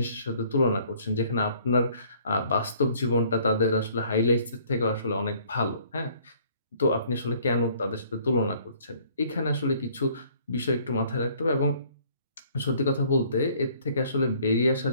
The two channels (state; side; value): inverted; both; correlation -0.59